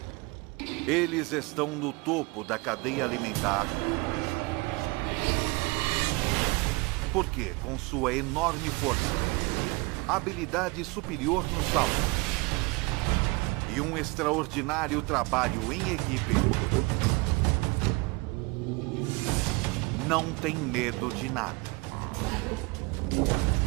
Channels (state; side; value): quieter; left; 26.4 dB